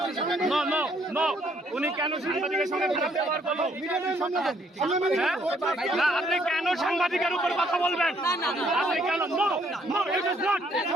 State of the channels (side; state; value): both; normal; correlation 0.67